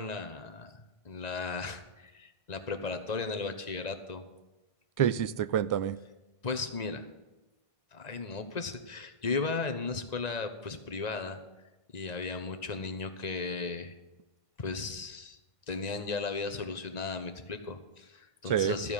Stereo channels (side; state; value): right; late; 1.9 ms